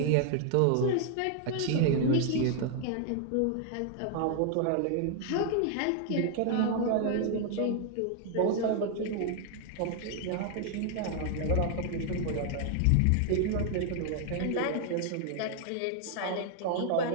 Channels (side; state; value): both; different; correlation 0.00